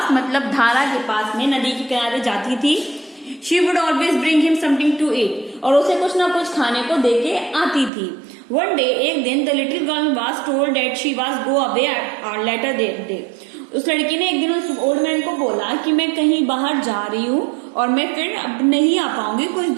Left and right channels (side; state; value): left; drops out; at 7.9 s